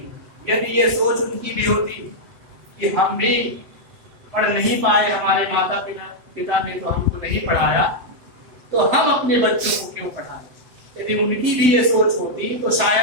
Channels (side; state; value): left; late; 7.9 ms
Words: यदि ये सोच उनकी भी होती कि हम भी पढ़ नहीं पाए, हमारे माता पिता ने तो हमको नहीं पढ़ाया तो हम अपने बच्चों को क्यों पढ़ाएं। यदि उनकी भी ये सोच होती तो